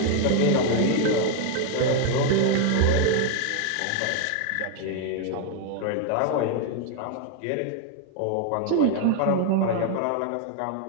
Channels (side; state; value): both; different; correlation 0.00